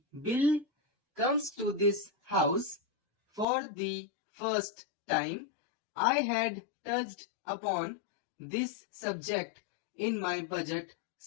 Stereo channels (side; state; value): right; drops out; at 3.5 s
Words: bill comes to this house for the first time, I had touched upon this subject in my budget